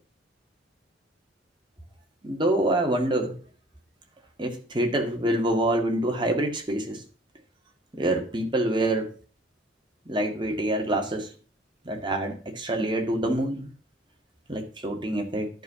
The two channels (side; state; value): both; normal; correlation 0.52